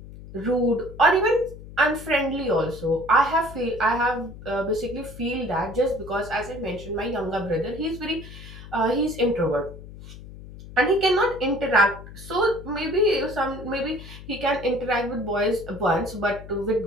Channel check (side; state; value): left; noise; hum, 15 dB below the sound